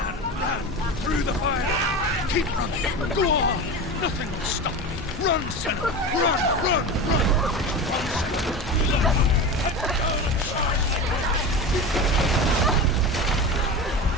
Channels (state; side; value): normal; both; correlation 0.27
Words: Through the fire! Keep running! Go on! Nothing will stop me! Run, Senua! Run! Run, Senua! Run!